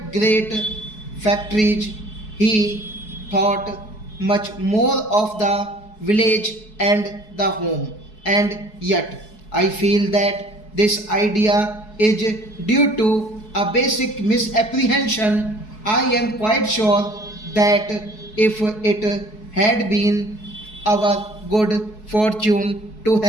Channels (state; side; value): late; right; 4.7 ms